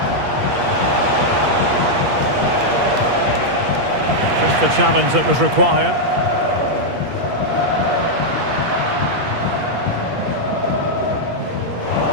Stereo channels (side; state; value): left; late; 8.4 ms